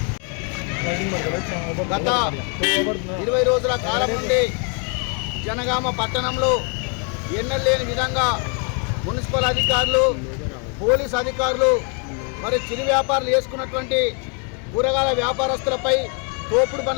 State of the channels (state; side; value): quieter; right; 37.4 dB